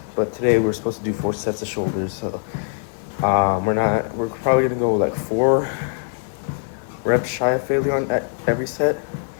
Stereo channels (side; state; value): right; silent; digital silence